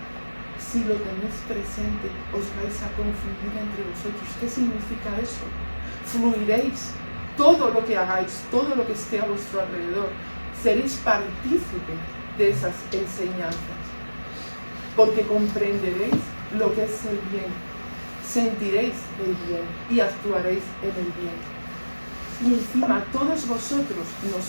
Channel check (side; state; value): both; inverted; correlation -1.00